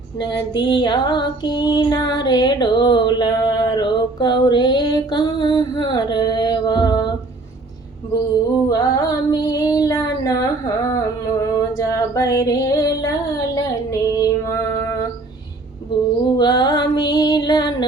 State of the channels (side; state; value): left; quieter; 3.2 dB